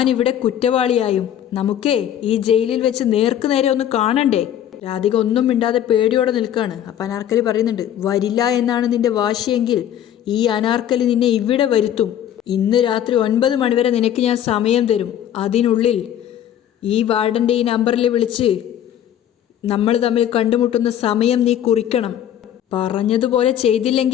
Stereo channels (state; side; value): quieter; right; 10.6 dB